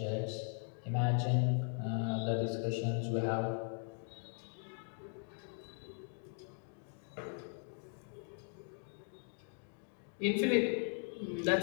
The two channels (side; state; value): right; silent; 52 dB below the other